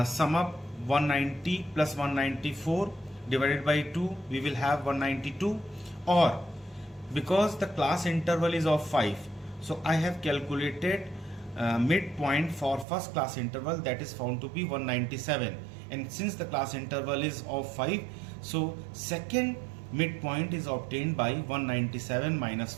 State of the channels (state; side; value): drops out; left; at 12.9 s